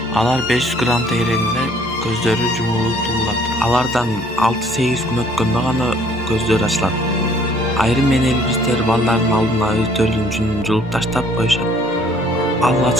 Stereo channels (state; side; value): normal; both; correlation 0.59